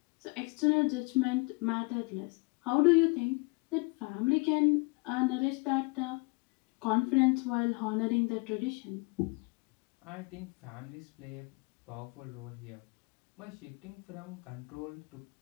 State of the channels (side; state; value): right; quieter; 29.9 dB